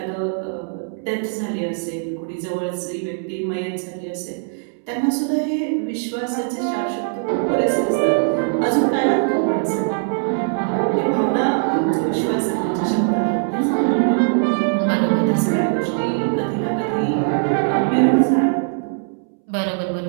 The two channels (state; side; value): silent; left; 65 dB below the other